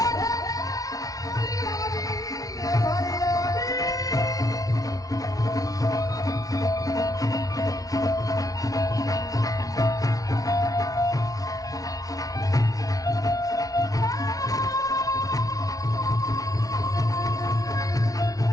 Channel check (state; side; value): late; right; 0.18 ms